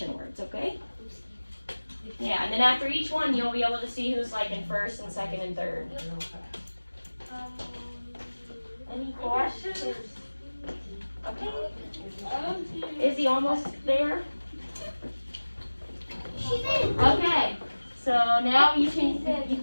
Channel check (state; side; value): inverted; both; correlation -1.00